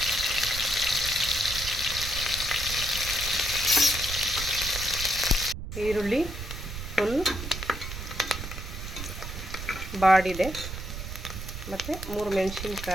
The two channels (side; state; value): right; noise; rumble, 8 dB below the sound